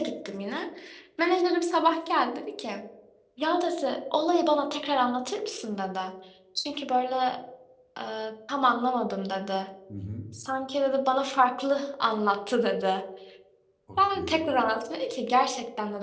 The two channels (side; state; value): both; identical; correlation 1.00